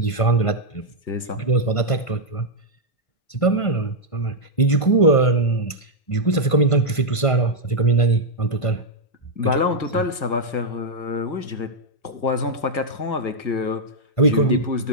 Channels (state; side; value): late; right; 1.5 ms